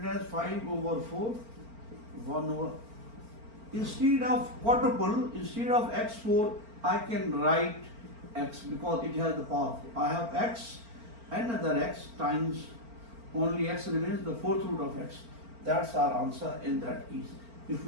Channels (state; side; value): late; left; 4.4 ms